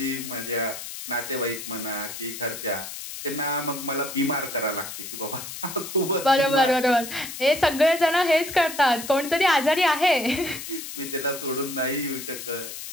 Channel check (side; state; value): left; noise; hiss, 9 dB below the sound